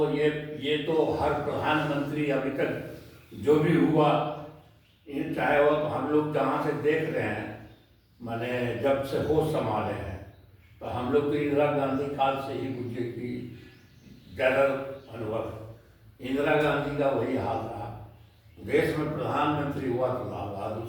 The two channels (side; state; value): both; identical; correlation 1.00